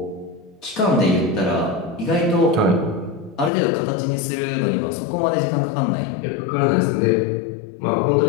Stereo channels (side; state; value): right; drops out; at 3.5 s